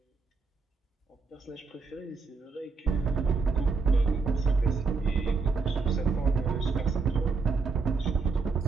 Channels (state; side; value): quieter; left; 4.5 dB